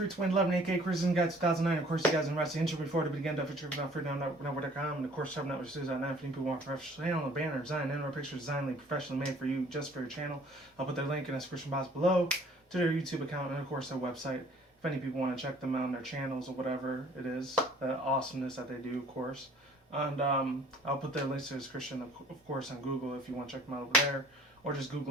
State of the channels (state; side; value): normal; both; correlation 0.54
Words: 2011, aka Cruising Guide 2009. Of course, you guys in the intro before to begin to feature without free down network.com. And of course, Shop Network Studios at 9 people want professional channel, banner design, and or picture design professionally made for you just for your channel. I'll put their link in the description box below to their YouTube account and, of course, their website. If any people want to check them out on their channels or whatever it is, the awesomeness that they do, of course. And I'll put their links to the description, of course, on Google if you want to check them out over there, or just